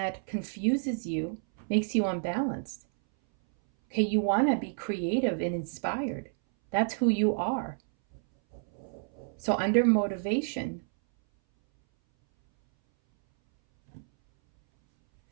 confuses you, makes you unbalanced. Okay, you want to be creative and inspired. That's who you are. So under motivation,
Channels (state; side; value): silent; left; 58 dB below the other